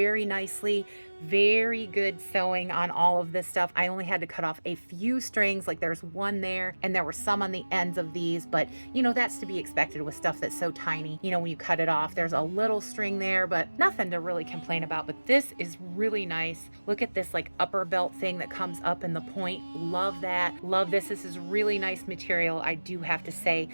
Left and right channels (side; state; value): both; inverted; correlation -1.00